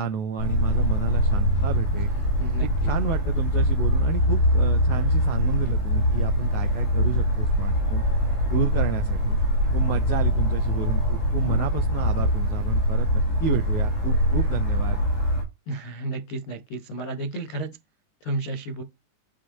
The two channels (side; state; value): right; late; 20 ms